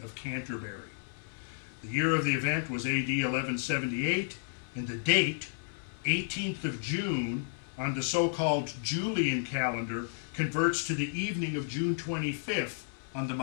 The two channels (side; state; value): right; silent; 56 dB below the other